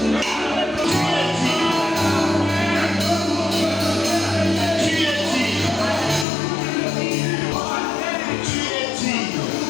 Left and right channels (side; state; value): right; drops out; at 6.2 s